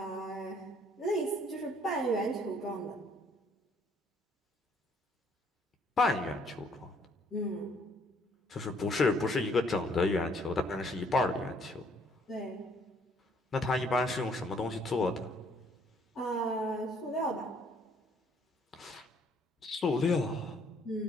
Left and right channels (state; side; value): normal; both; correlation 0.64